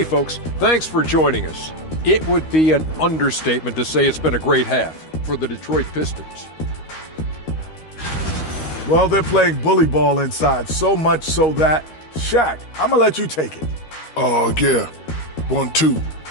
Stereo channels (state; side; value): late; right; 13 ms